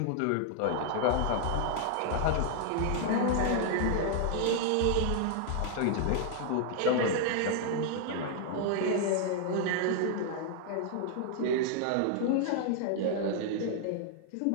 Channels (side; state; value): both; different; correlation 0.00